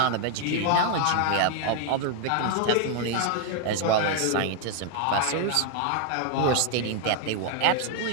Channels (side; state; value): both; different; correlation 0.00